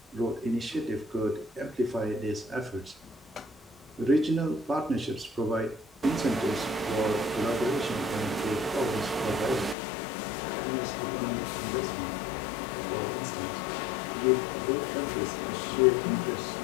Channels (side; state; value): right; drops out; at 9.8 s